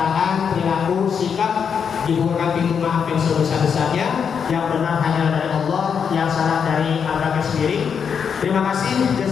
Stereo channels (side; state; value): right; quieter; 6.9 dB